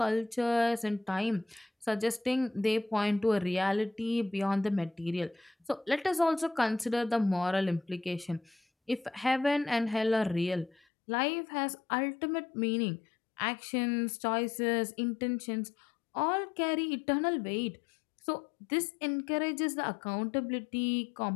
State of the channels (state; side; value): drops out; right; at 10.8 s